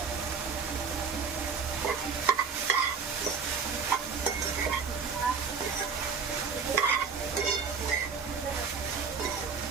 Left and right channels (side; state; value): left; quieter; 5.6 dB